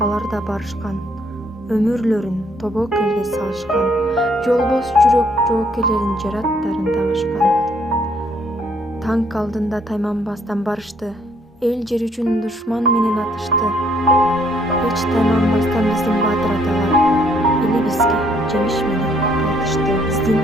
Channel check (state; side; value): normal; both; correlation 0.66